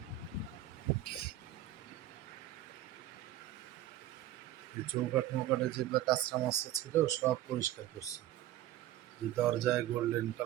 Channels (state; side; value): quieter; left; 13.1 dB